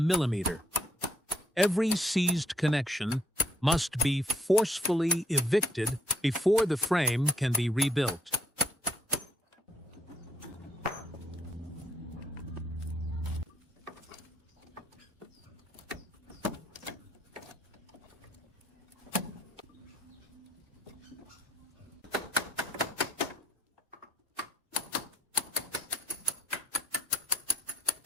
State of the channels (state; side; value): normal; both; correlation 0.69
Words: Every seized connection must be forcefully evicted before the frame can be rebuilt.